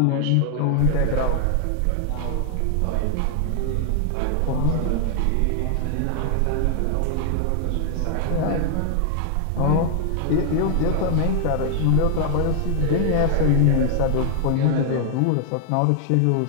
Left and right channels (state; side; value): different; both; correlation 0.00